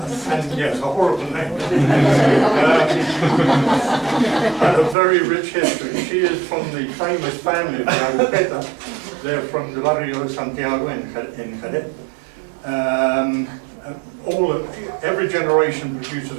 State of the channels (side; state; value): left; drops out; at 5.0 s